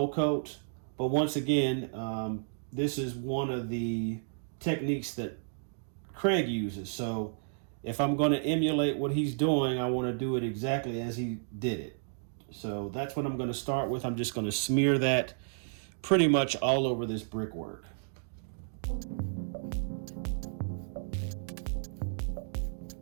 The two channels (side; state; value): left; silent; digital silence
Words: coat, but once again, this is one of the techniques that Craig uses. So if I'm going to emulate what he's doing, I want to do it exactly as he did it. So that's what I'm going to start with. I'm just going to smear that pretty much all over this brickwork.